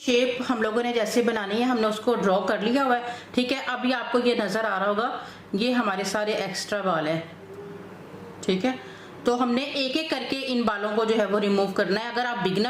हम लोगों ने जैसे बनानी है हमने उसको ड्रॉ कर लिया हुआ है। ठीक है, अभी आपको ये नज़र आ रहा होगा, ये हमारे सारे एक्स्ट्रा बाल है। ठीक है, तो हमने एक एक करके इन बालों को जो है वो रिमूव करना है। अगर आप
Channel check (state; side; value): identical; both; correlation 1.00